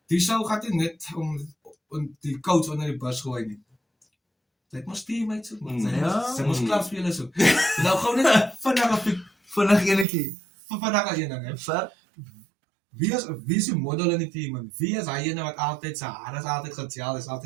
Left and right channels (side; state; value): left; drops out; at 10.1 s